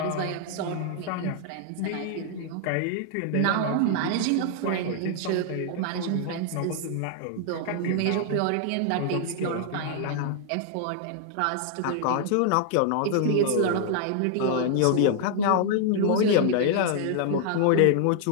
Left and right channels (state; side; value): different; both; correlation 0.00